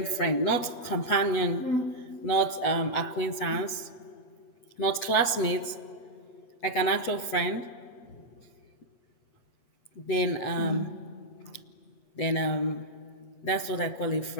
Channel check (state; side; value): late; right; 8.4 ms